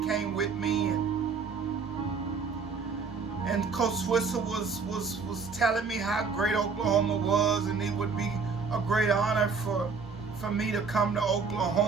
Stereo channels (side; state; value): left; quieter; 5.0 dB